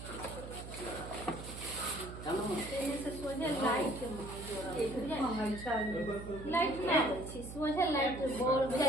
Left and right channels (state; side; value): noise; right; hum, 11 dB below the sound